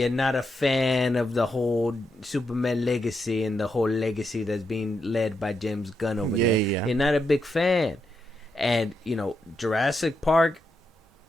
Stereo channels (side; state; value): both; normal; correlation 0.83